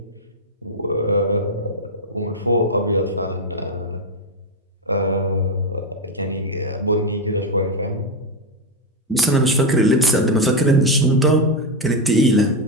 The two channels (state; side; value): normal; both; correlation 0.07